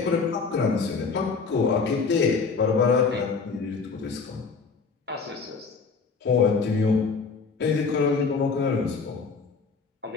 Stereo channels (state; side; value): quieter; right; 4.9 dB